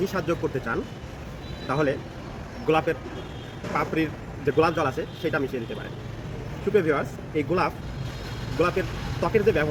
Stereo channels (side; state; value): both; identical; correlation 1.00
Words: স্বাদ যোগ করতে চান, তাহলে গোলাপের পাপড়ির যে গোলাপ জল আছে সেটা মিশিয়ে দিতে পারেন। সুপ্রিয় ভিউয়ার্স, এই গোলাপের ত্বকের যে